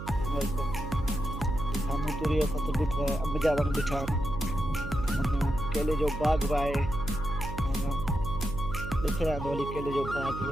साम्हूं तूरी जो फसल ॾिठो आहे, अंब जा वण ॾिठा आहिनि, केले जो बाग़ बि आहे, ॾिसी रहिया हली केले जो बाग़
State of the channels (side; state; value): right; noise; hum, 8 dB below the sound